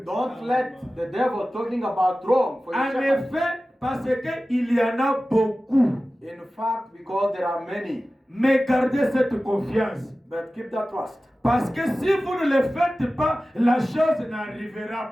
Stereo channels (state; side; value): normal; both; correlation 0.96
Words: Don't let the devil talking about wrong for your En shepherd. effet, parce qu'il y en a beaucoup. In fact, because there are many, Mais gardez cette confiance. but keep that trust. Parce que si vous ne le faites pas, la chose